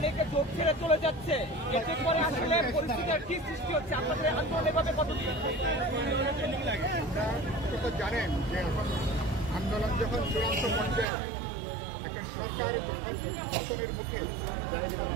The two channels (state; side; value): drops out; left; at 11.1 s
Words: যোগ ছেড়ে চলে যাচ্ছে, এতে করে আসলে পরিস্থিতির কি সৃষ্টি হচ্ছে? আপনাদের আন্দোলন এভাবে কতদিন? তো জানেন যে এখন আন্দোলন যখন চূড়ান্ত পর্যায়ে একটা সরকার যখন পতনের মুখে